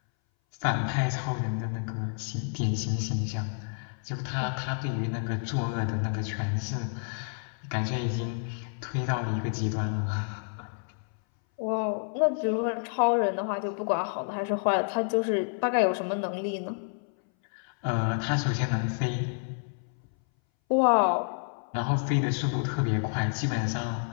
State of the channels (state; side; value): silent; right; 58 dB below the other